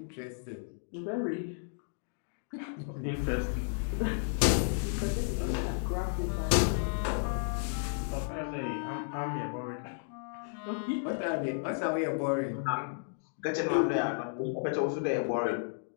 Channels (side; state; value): right; silent; digital silence